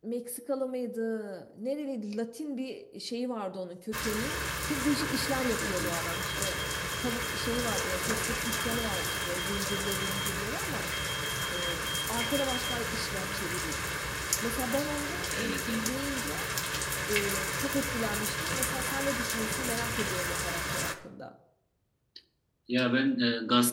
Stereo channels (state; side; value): identical; both; correlation 1.00